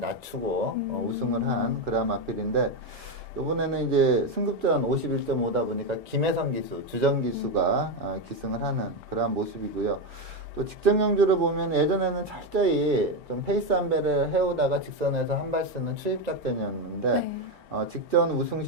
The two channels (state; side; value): normal; both; correlation 0.10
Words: 우승을 한 그런 마필인데 이번에는 이제 승급전 51.5다 보니까 김혜성 기수, 주정 기수가 기승을 하는 그러한 모습이고요. 또 직전 경주를 보면 예전에는 철저히 좀 페이스 한 배를 해오다가 직선에서 한 발 쓰는 추입 작전이었는데 네. 직전 우승